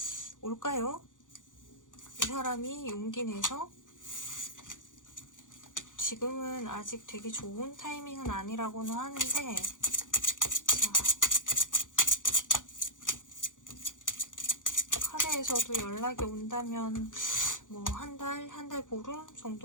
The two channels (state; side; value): late; right; 0.87 ms